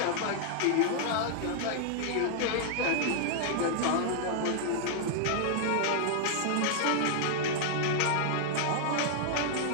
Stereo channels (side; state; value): both; different; correlation -0.01